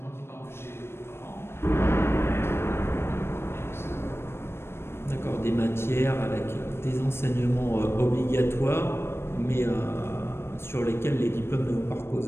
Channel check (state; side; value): late; right; 0.12 ms